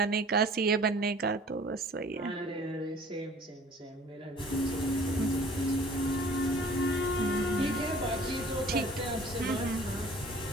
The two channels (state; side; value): normal; both; correlation 0.50